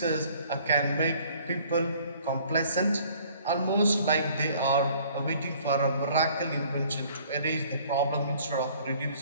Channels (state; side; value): inverted; both; correlation -0.56